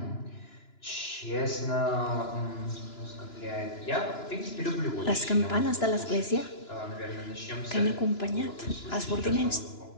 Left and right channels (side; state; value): right; late; 2.9 ms